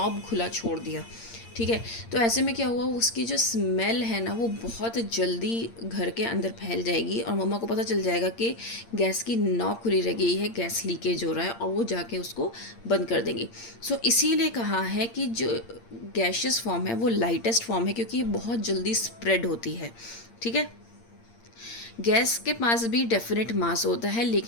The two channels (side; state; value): right; late; 8.7 ms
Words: खुला छोड़ दिया, ठीक है। तो ऐसे में क्या हुआ, उसकी जो स्मेल है ना वो बहुत जल्दी घर के अंदर फैल जाएगी और मम्मा को पता चल जाएगा कि गैस की नॉब खुली रह गई है, गैस लीकेज हो रहा है, और वो जाके उसको बंद कर देंगी। सो इसीलिए कहा है कि जो गैशियस फॉर्म है वो लाइटेस्ट फॉर्म है, क्योंकि ये बहुत जल्दी स्प्रेड होती है, ठीक है। गैस के पास भी डेफिनेट मास होता है,